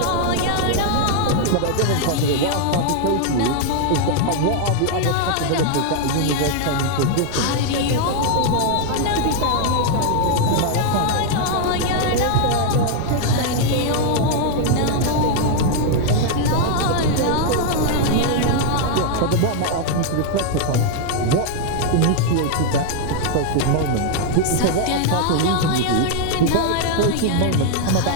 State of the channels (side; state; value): both; different; correlation 0.00